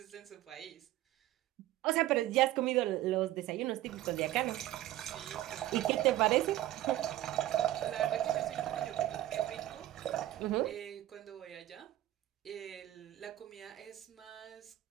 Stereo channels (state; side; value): quieter; left; 14.6 dB